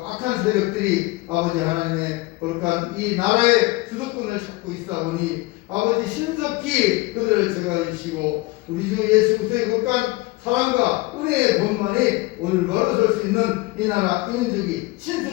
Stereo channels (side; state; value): right; quieter; 21.7 dB